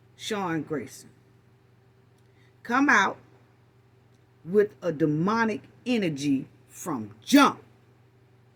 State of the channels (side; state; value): both; identical; correlation 1.00